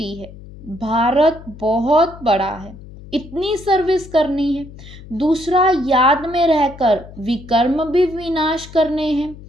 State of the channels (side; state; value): left; noise; hum, 17 dB below the sound